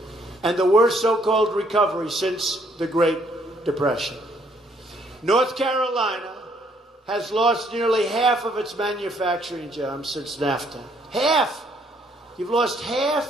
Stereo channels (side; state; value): both; normal; correlation 0.67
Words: and the worst so-called recovery since the Great Depression. North Carolina has lost nearly half of its manufacturing jobs since NAFTA. Half! You've lost